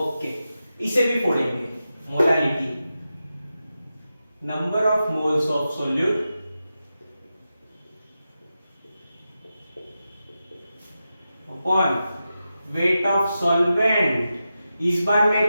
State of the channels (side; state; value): both; inverted; correlation -0.91